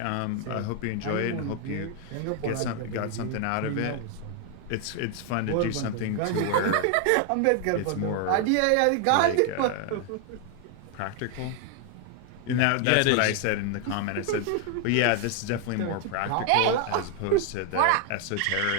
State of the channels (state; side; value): different; both; correlation 0.00